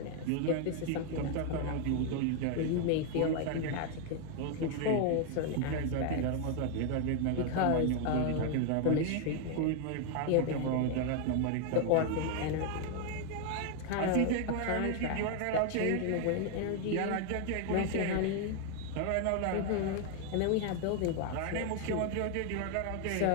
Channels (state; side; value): different; both; correlation 0.00